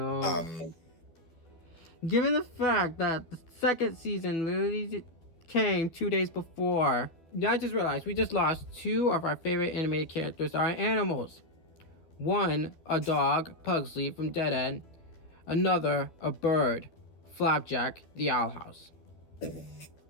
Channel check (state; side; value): late; right; 12 ms